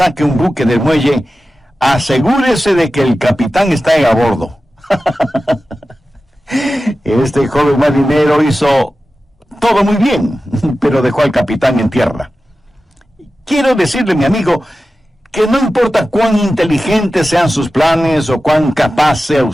un buque del muelle, asegúrese de que el capitán está a bordo. Este joven marinero hizo todo muy bien, pero dejó al capitán en tierra. Quiero decirle, mi amigo, que no importa cuán inteligentes sean sus planes o cuán capaz sea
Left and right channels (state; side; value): normal; both; correlation 0.94